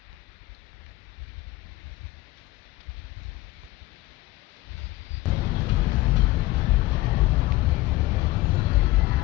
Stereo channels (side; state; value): right; quieter; 18.4 dB